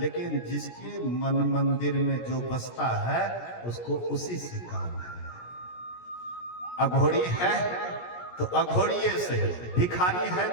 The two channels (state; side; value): late; right; 17 ms